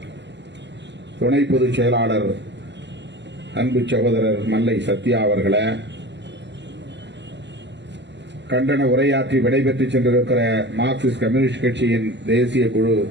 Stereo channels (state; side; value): late; left; 0.51 ms